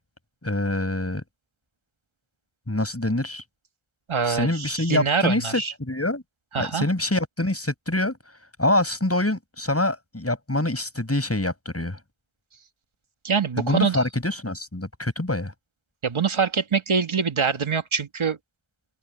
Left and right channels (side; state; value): both; normal; correlation 0.06